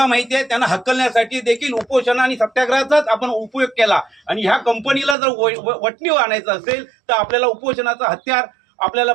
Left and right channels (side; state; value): left; drops out; at 5.2 s